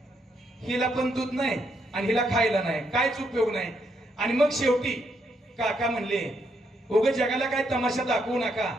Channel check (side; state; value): both; normal; correlation 0.77